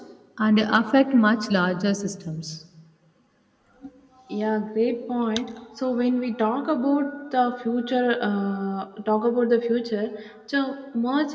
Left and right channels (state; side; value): identical; both; correlation 1.00